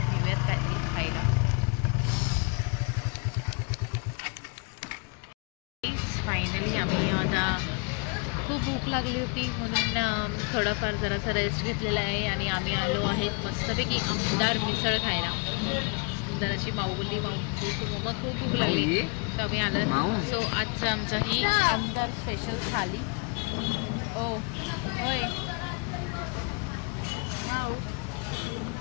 घेऊयात काहीतरी खायला. फायनली आम्ही आता खूप भूक लागली होती म्हणून थोडाफार जरासा रेस्ट घेतलेला आहे आणि आम्ही आलो आहेत मस्तपैकी आमदार मिसळ खायला. सुंदर अशी माऊ बोलली मम्मा खूप भूक लागली तर आम्ही आलो. सो आजचं आमचा ही आमदार स्पेशल थाली. ओ होय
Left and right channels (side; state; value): right; quieter; 34.6 dB